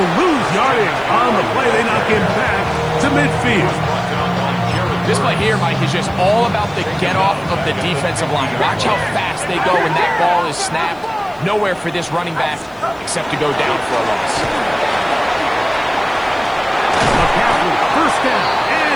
lose yardage on the play. They knock him back to midfield. This play here, Mike, is just all about the get-off of the defensive line. Watch how fast they go when that ball is snapped. Nowhere for this running back except to go down for a loss. McCaffrey, first down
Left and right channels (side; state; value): left; noise; hiss, 30 dB below the sound